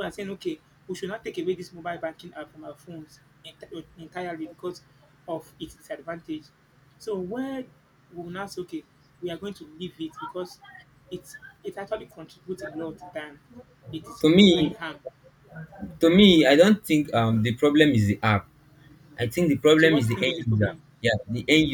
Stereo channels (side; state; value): both; identical; correlation 1.00